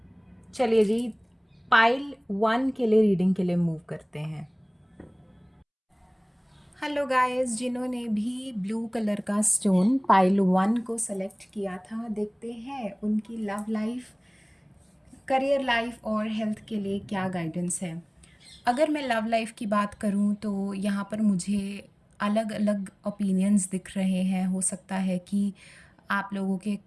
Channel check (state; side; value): identical; both; correlation 1.00